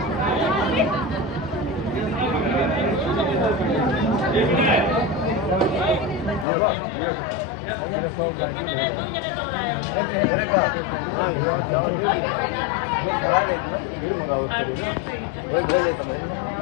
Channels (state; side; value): drops out; right; at 6.5 s